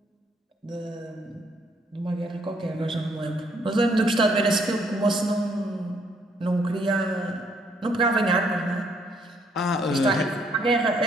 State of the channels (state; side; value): normal; both; correlation 0.69